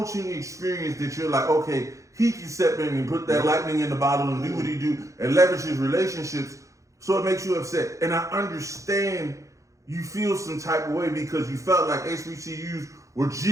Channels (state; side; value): late; left; 0.15 ms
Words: experience that you're like, okay, he can step in and put that lightning in the bottle and do what he do and leverage his relationships, so it makes you upset. And I understand you feel some type of way because you felt like HBCUs were